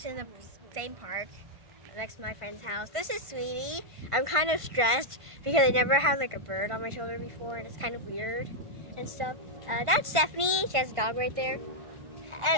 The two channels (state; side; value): late; left; 1.5 ms